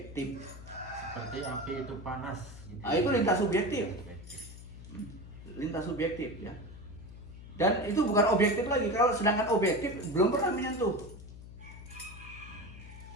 Seperti api itu panas gitu. Nah, itu lintas subjektif. Lintas subjektif ya. Dan itu bukan objektif lagi. Kalau sedangkan objektif belum pernah menyentuh.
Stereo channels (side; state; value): left; noise; hum, 15 dB below the sound